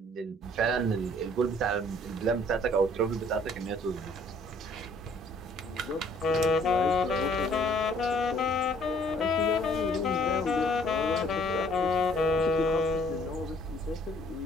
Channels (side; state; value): both; normal; correlation 0.59